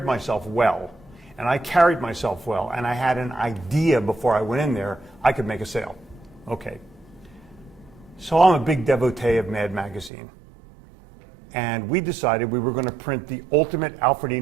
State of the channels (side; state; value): left; drops out; at 10.1 s